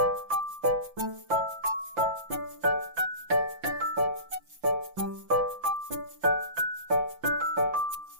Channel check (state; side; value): late; left; 5.8 ms